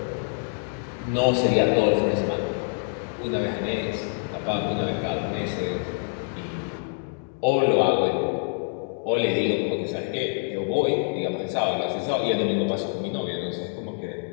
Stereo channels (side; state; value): right; silent; 61 dB below the other